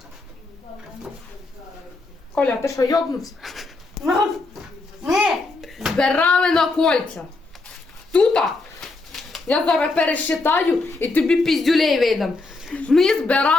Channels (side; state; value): right; quieter; 3.4 dB